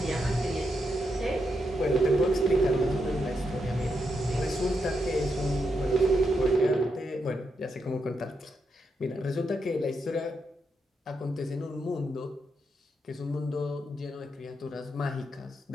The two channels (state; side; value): normal; both; correlation 0.82